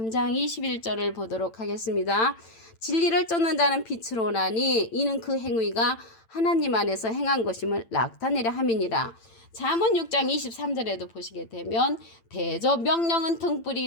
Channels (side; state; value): right; late; 8.9 ms